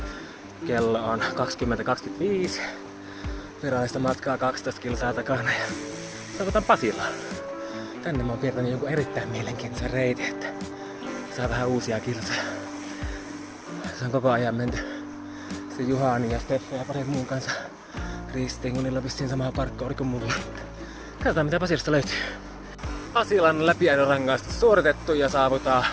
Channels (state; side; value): identical; both; correlation 1.00